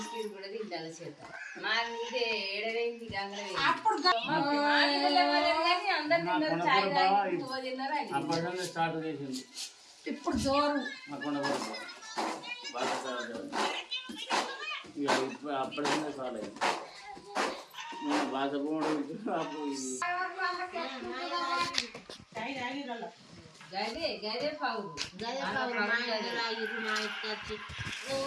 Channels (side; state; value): both; identical; correlation 1.00